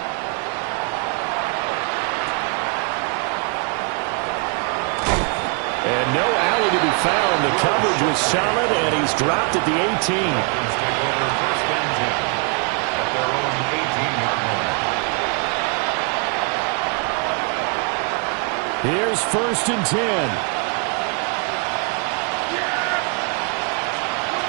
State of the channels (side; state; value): left; quieter; 36.7 dB